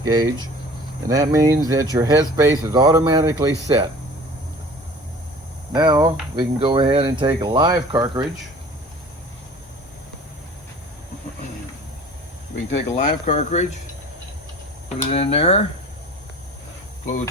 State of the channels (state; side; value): normal; both; correlation 0.45